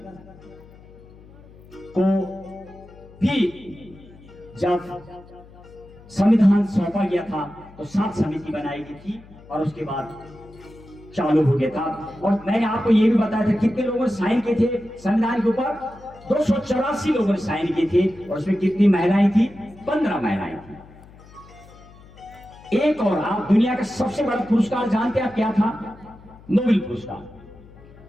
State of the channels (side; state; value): left; noise; hum, 22 dB below the sound